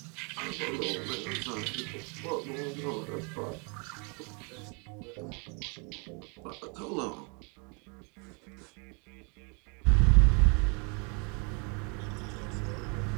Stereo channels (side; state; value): left; quieter; 34.0 dB